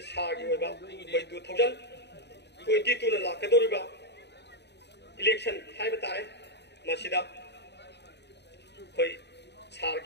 सागी ओइबा कोइ 2022 ना लाकदोरिबा इलेक्शन हाइबा तारे मसिदा कोइ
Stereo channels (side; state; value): right; late; 0.50 ms